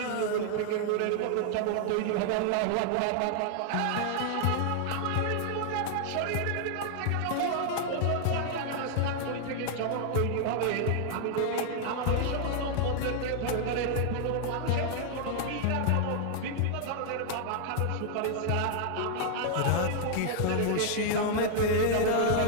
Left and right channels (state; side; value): different; both; correlation 0.00